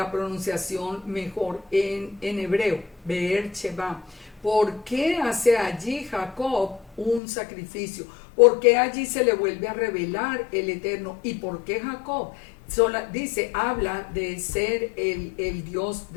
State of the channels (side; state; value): right; drops out; at 7.2 s